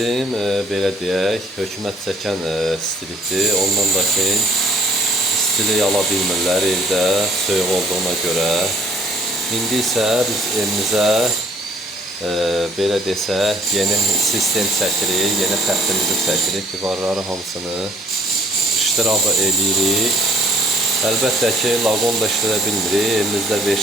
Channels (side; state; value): both; normal; correlation 0.59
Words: belə deyək, hökumət çəkən istilikdir. Ondan da ki, istilik ala bilmirlər evdə, soyuq olduğuna görə. İndi isə biz evimizə belə desək, yeni sistem çəkirik, yeni xəttimizi çəkirik, divarları hamısını iştirabı eləyirik. Əlbəttə ki, laqon da işlədə bilmirik, elimizdə